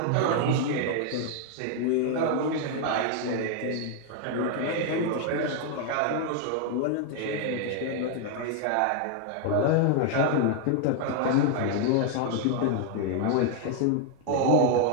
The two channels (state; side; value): different; both; correlation 0.00